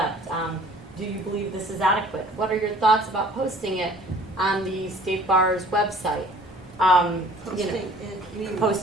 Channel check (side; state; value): both; normal; correlation 0.51